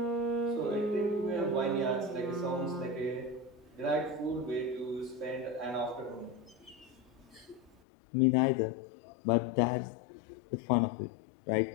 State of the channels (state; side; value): drops out; right; at 7.8 s